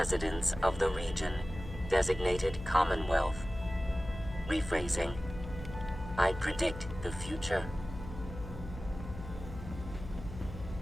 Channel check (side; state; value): left; noise; hum, 11 dB below the sound